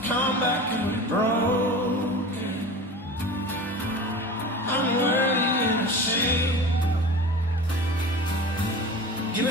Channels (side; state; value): both; normal; correlation 0.34